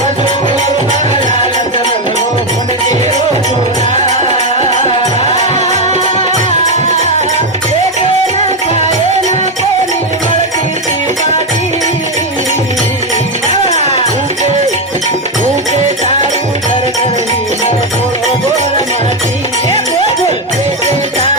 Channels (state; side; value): normal; both; correlation 0.07